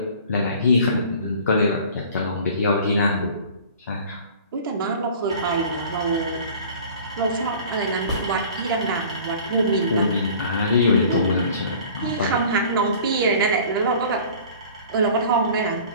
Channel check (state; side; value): inverted; both; correlation -0.45